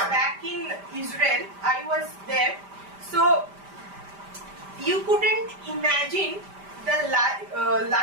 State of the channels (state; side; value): late; left; 5.0 ms